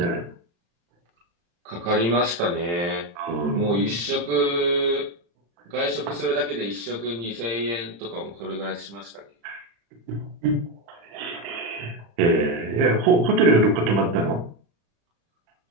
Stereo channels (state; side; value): late; left; 35 ms